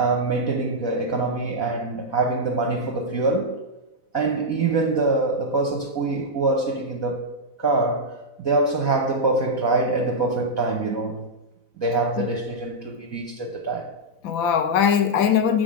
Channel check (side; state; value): right; late; 4.1 ms